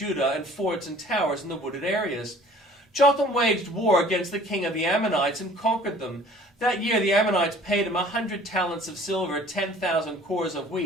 and forts and towers in the wooded areas. Jotham waged war against the king of the Ammonites and conquered them. That year the Ammonites paid him 100 talents of silver, 10,000 cores of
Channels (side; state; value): both; normal; correlation 0.50